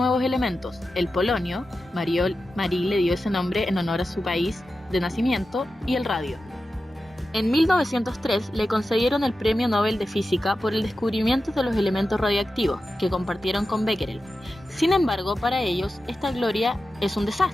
elementos, el polonio, Marie le dio ese nombre en honor a su país de nacimiento, y el radio. En 1903 le concedieron el Premio Nobel de Física por el descubrimiento de los elementos radioactivos, que compartieron con Becquerel. Sin embargo, para ellos, esta gloria es un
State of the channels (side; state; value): both; normal; correlation 0.92